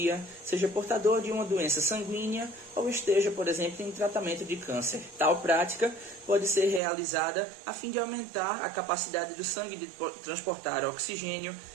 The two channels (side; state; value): left; drops out; at 6.8 s